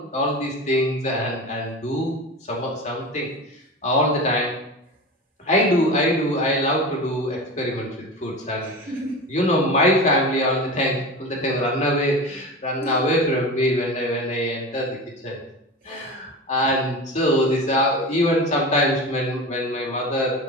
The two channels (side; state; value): both; normal; correlation 0.29